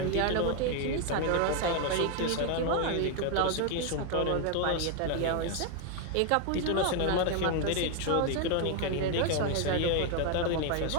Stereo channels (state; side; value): different; both; correlation 0.01